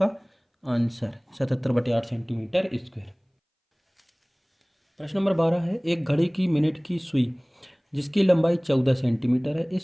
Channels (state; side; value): identical; both; correlation 1.00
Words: आंसर 77/8 सेंटीमीटर स्क्वायर। प्रश्न नंबर 12 है, एक घड़ी की मिनट की सुई जिसकी लंबाई 14 सेंटीमीटर है,